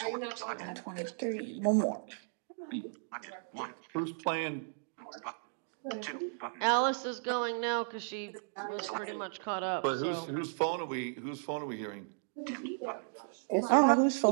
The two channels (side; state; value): left; silent; digital silence